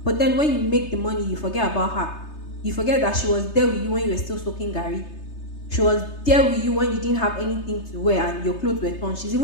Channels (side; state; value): right; late; 3.3 ms